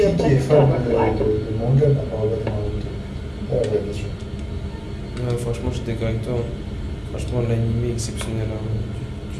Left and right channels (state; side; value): identical; both; correlation 1.00